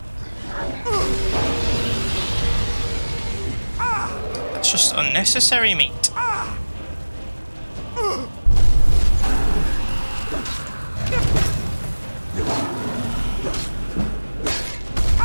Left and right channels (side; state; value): both; inverted; correlation -1.00